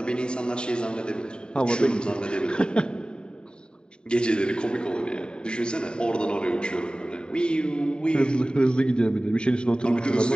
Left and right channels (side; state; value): right; late; 0.049 ms